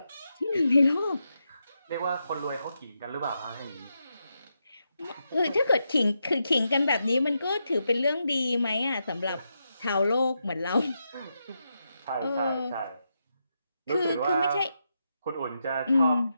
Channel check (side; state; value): both; inverted; correlation -0.85